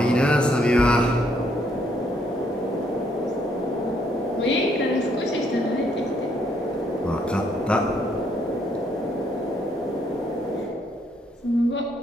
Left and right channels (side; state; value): both; normal; correlation 0.71